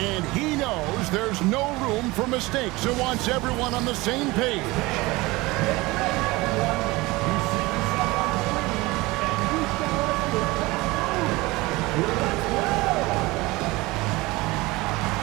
he knows there's no room for mistakes and wants everyone on the same page.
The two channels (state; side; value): quieter; left; 21.7 dB